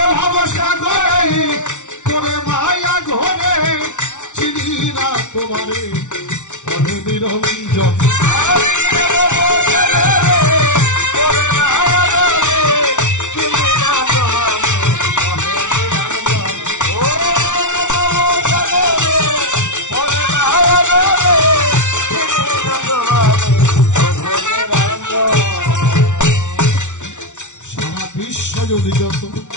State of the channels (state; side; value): late; right; 0.85 ms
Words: ভবসাগরে তোরে মায়া ঘরে চিনি না তোমারে প্রভু নিরঞ্জন যদি যত